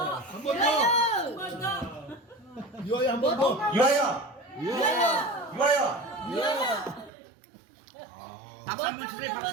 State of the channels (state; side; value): drops out; left; at 7.1 s